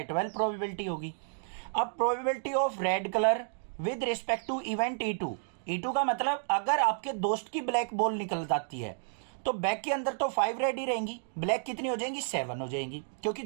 प्रोबेबिलिटी होगी। अब probability of red colour with respect to event E2 का मतलब अगर आपके दोस्त की ब्लैक बॉल निकल जाती है तो बैग के अंदर तो 5 रेड ही रहेंगी, ब्लैक कितनी हो जाएंगी? 7 हो जाएंगी, क्योंकि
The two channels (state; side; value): silent; left; digital silence